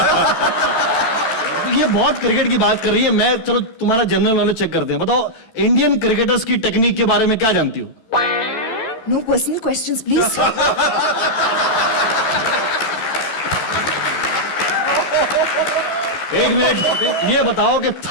ये बहुत क्रिकेट की बात कर रही है। मैं, चलो तुम्हारा जनरल नॉलेज चेक करते हैं। बताओ, इंडियन क्रिकेटर्स की टेक्निक के बारे में क्या जानती हो? No personal questions please. एक मिनट, ये बताओ कि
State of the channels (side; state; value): right; late; 13 ms